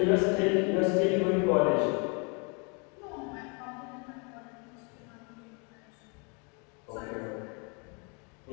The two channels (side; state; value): right; quieter; 34.3 dB